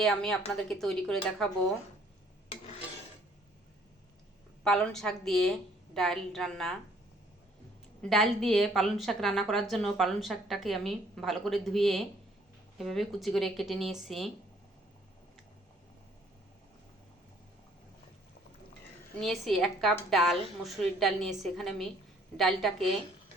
আমি আপনাদেরকে তৈরি করে দেখাবো পালং শাক দিয়ে ডাল রান্না। ডাল দিয়ে পালং শাক রান্না করার জন্য পালং শাকটাকে আমি ভালো করে ধুয়ে এভাবে কুচি করে কেটে নিয়েছি। নিয়েছি 1 কাপ ডাল, মসুরির ডাল নিয়েছি। এখানে আমি ডালটাকে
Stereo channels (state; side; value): normal; both; correlation 0.61